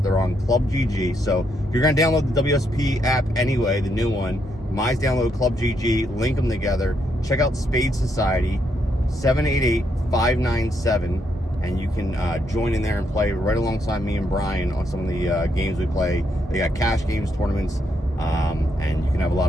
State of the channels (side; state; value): both; normal; correlation 0.77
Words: They're on ClubGG. So if you're going to download the WSOP app anyway, the new one, might download ClubGG, link them together. Check out Spade Society, 788-597. And you can join in there and play right alongside me and Brian on some of the games we play. They got cash games, tournaments, and you can have a lot